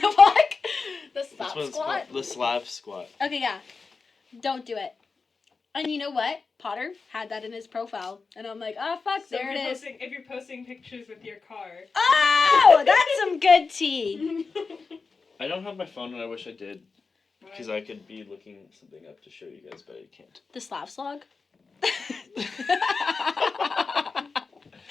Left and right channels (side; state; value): right; quieter; 4.5 dB